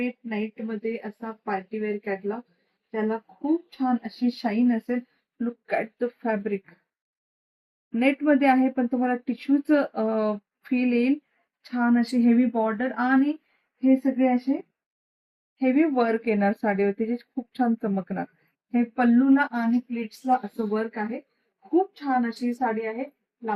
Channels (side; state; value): both; identical; correlation 1.00